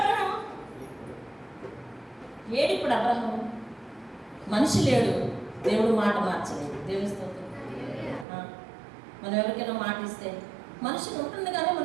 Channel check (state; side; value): drops out; left; at 8.2 s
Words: అబ్రహాము. మనిషి లేడు, దేవుడు మాట మార్చలేదు. దేవుని స్తోత్రం. మనం ఎవరికైనా మాట ఇస్తే మనిషి ఉంటుంది, కానీ